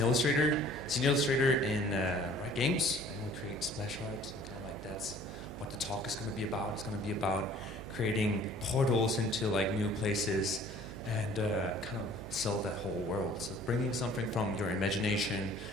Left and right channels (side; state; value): right; noise; hum, 12 dB below the sound